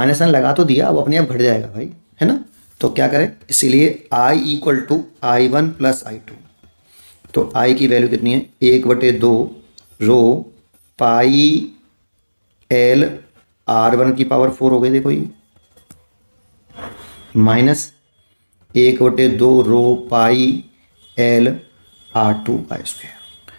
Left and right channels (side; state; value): both; inverted; correlation -1.00